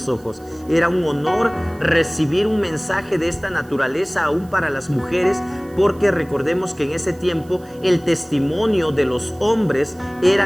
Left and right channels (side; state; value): right; noise; hiss, 27 dB below the sound